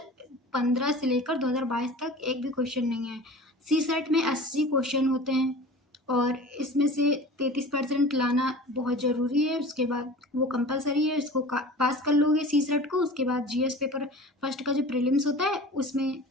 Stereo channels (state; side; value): normal; both; correlation 0.39